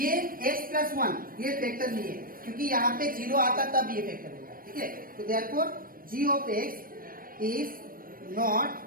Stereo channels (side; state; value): left; late; 0.41 ms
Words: x प्लस 1 ये फैक्टर नहीं है क्योंकि यहाँ पे 0 आता तब ये फैक्टर होगा, ठीक है। तो therefore g of x is not